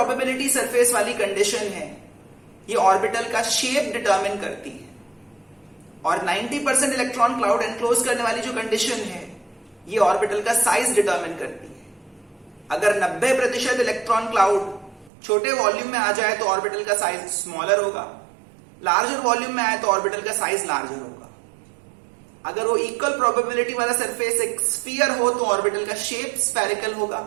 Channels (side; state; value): left; drops out; at 15.1 s